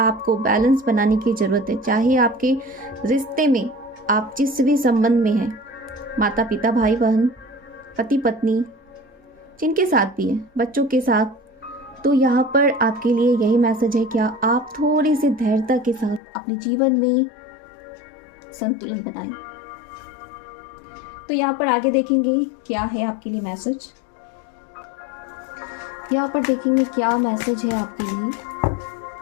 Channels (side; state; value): right; drops out; at 16.2 s